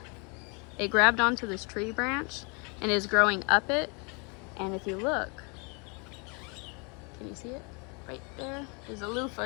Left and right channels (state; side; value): quieter; right; 33.2 dB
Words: It grabbed onto this tree branch and is growing up it. And if you look, can you see it? Right there, there's a loofah